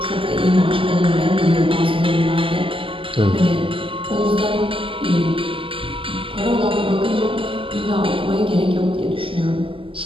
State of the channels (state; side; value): late; left; 0.25 ms